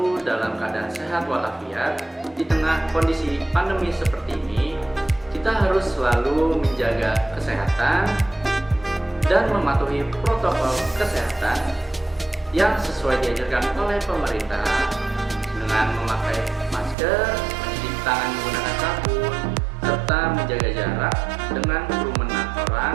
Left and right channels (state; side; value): drops out; left; at 16.9 s